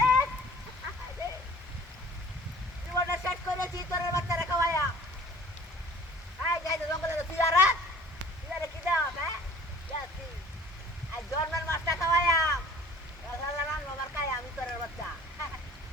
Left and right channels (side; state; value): both; normal; correlation 0.49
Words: জীবনটা সেট করেছি তোর বাচ্চা রেখা হইয়া আই যাই তো জঙ্গলে তুইয়ারা কি দাও হ্যাঁ যাচ্ছি আজ জন্মের মাছটা খাওয়াইয়া রাম আমার খাই আমি তোর বাচ্চা